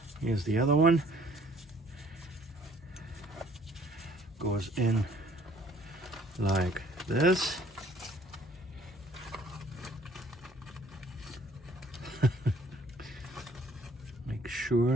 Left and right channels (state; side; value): normal; both; correlation 0.58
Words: Here's the other one. Goes in like this. Make